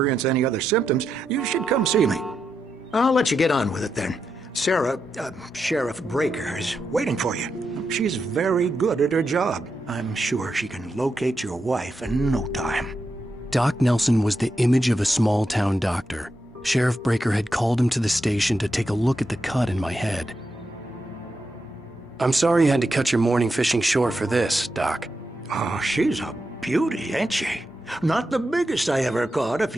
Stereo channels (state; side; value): normal; both; correlation 0.85